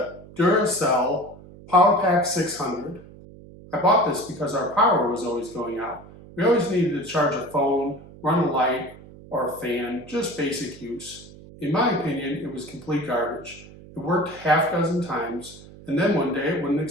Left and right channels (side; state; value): right; noise; hum, 19 dB below the sound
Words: Duracell PowerPack 600. I bought this because our power was always going out. We always needed to charge a phone, run a light, or a fan, just basic use. In my opinion, it was complete garbage. It worked half a dozen times, and then one day it wouldn't